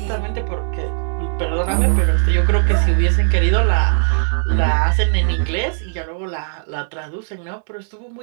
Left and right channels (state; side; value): silent; left; digital silence